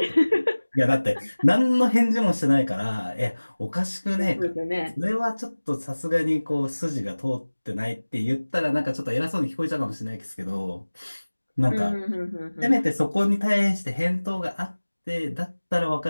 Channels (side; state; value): both; inverted; correlation -1.00